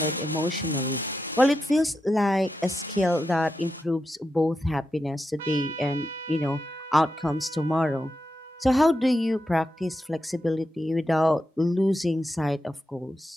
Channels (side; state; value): both; normal; correlation 0.87